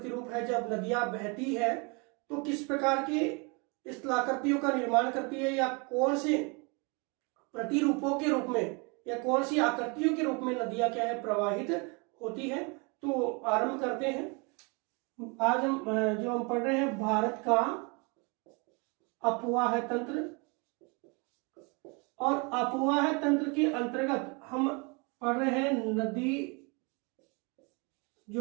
है, जब नदियां बहती है तो किस प्रकार के स्थलाकृतियों का निर्माण करती है, या कौन से प्रतिरूपों के रूप में या कौन सी आकृतियों के रूप में नदियां क्या है प्रवाहित होती है। तो आरंभ करते हैं। आज हम पढ़ रहे हैं भारत का अफवाह तंत्र, और अफवाह तंत्र के अंतर्गत हम पढ़ रहे हैं नदी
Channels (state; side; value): quieter; left; 31.3 dB